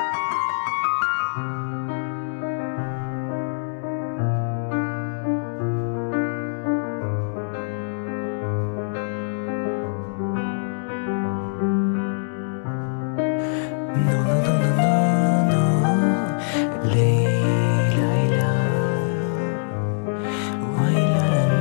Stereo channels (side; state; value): right; silent; 63 dB below the other